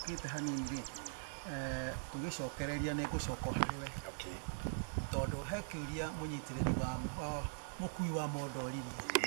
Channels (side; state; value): left; silent; digital silence